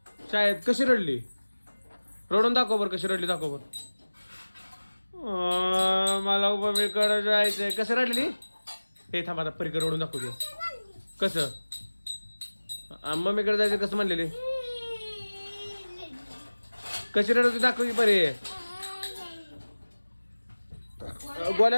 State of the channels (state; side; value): inverted; both; correlation -1.00